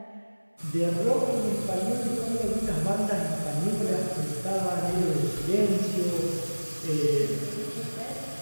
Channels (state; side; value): inverted; both; correlation -1.00